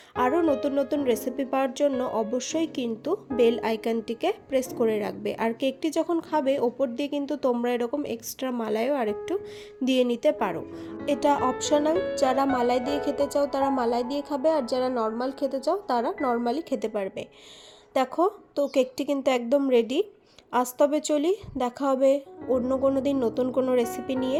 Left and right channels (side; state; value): both; identical; correlation 1.00